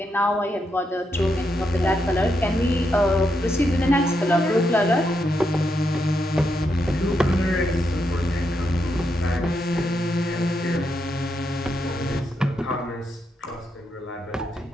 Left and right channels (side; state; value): both; normal; correlation 0.82